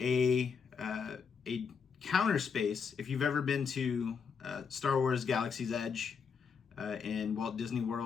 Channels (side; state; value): right; quieter; 6.1 dB